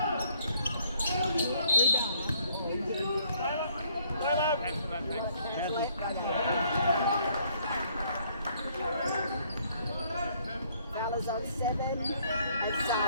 Fowler's on 7 and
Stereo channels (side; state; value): both; inverted; correlation -0.65